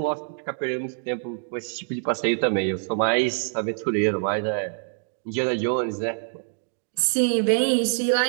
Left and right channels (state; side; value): silent; left; 62 dB below the other